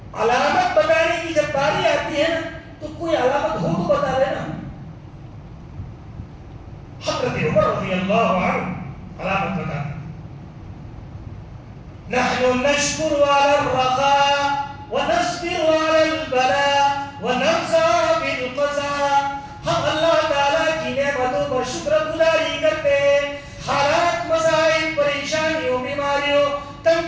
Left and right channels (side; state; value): both; identical; correlation 1.00